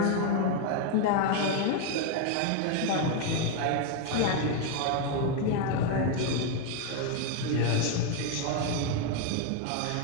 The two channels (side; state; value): both; different; correlation 0.01